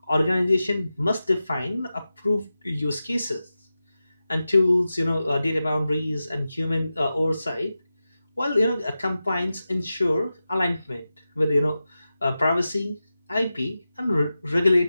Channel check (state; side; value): inverted; both; correlation -0.93